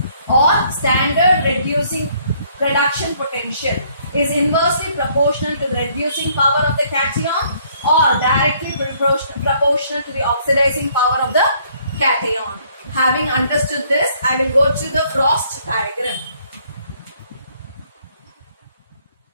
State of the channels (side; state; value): both; inverted; correlation -0.64